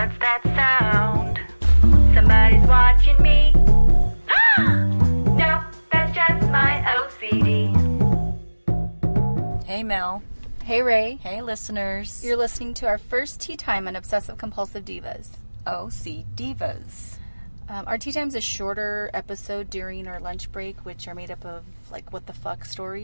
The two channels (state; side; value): inverted; both; correlation -1.00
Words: that sound? Somebody's watching me. No, that's just my OCD. Hey Mel. Hey Ray. Hey listeners. You're listening to our first tea time on Obsessive Compulsive Divas. OCDivas. Our tea time is a shorter episode during our lunch break, which are made up of like what the fuck